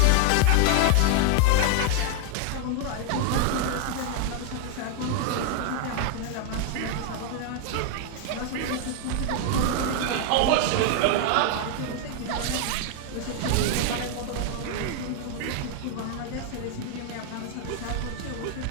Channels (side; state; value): both; different; correlation 0.00